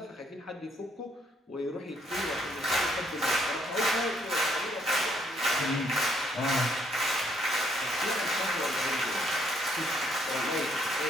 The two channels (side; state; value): both; normal; correlation 0.70